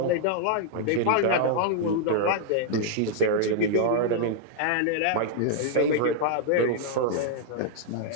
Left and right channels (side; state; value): both; different; correlation -0.01